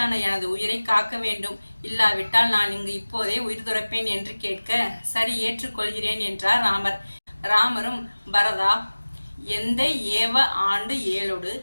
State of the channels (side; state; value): both; inverted; correlation -1.00